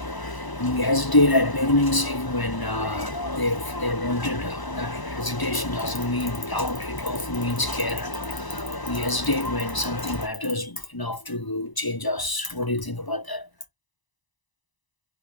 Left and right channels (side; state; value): right; late; 1.0 ms